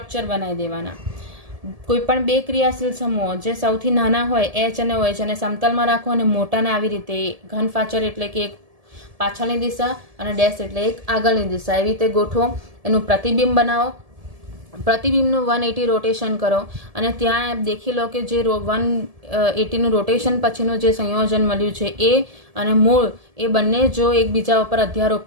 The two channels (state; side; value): late; left; 1.7 ms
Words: બનાવી દેવાના. કોઈ પણ બે ક્રિયાશીલ સમૂહો જે સૌથી નાના હોય H અને OH અને સમતલમાં રાખો, અને મોટાને આવી રીતે ઘન ફાચર એટલે કે એક પાછળની દિશા અને ડેશ એટલે એક આગળની દિશા, એવી રીતે ગોઠવો. એનું પ્રતિબિંબ બનાવો, પ્રતિબિંબનું 180 રોટેશન કરો અને ત્યાં દેખી લો કે જે 180 નું રોટેશન પછીનું જે સંયોજન મળ્યું છે એ અને મૂળ એ બંને જો એકબીજા ઉપર